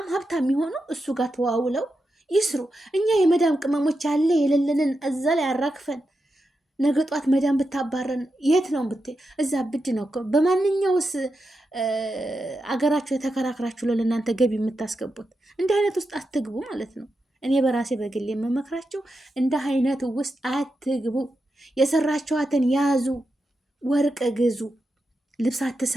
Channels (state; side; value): normal; both; correlation 0.88